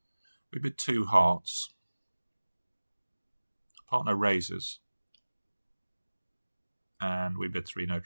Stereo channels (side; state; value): both; inverted; correlation -1.00